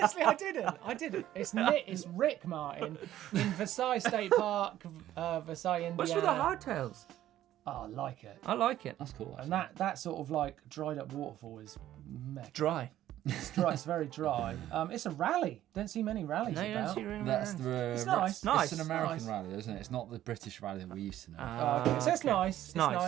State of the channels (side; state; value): left; quieter; 12.9 dB